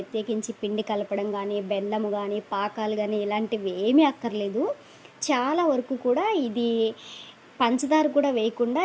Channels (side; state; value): both; identical; correlation 1.00